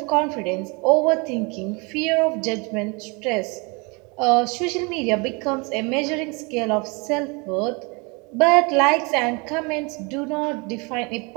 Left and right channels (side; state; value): left; quieter; 29.6 dB